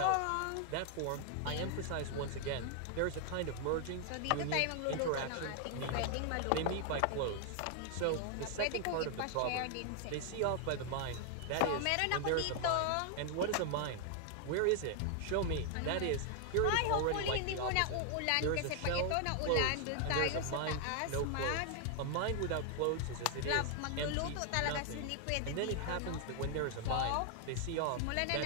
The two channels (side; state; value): both; different; correlation 0.00